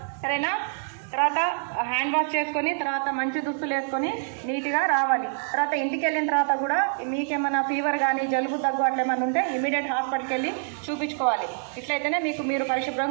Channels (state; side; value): silent; left; digital silence